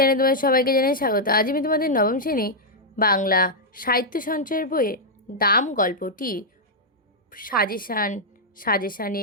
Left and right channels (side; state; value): both; normal; correlation -0.04